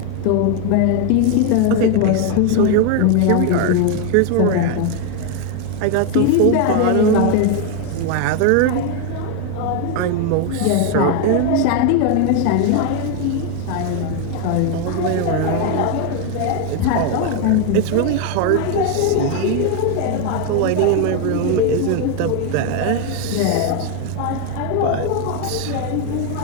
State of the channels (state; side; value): different; both; correlation 0.01